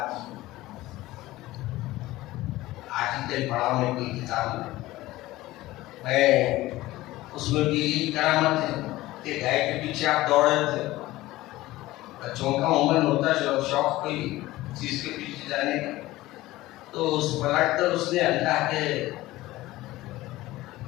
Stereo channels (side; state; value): right; quieter; 17.5 dB